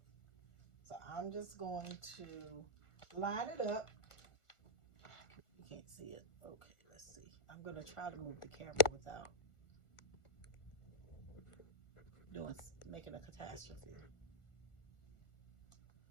So I'm just going to line it up. You can't see it. Okay, let's see. I'm going to try to move the camera without making a catastrophe.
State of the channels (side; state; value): right; late; 1.4 ms